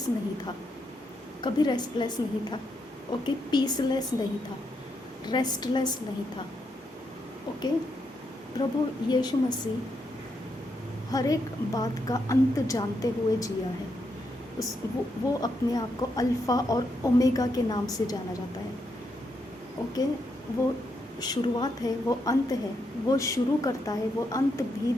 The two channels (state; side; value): normal; both; correlation 0.80